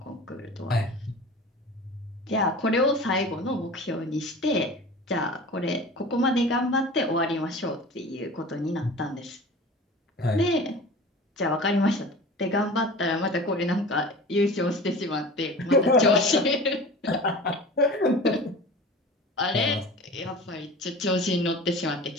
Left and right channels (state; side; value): normal; both; correlation 0.38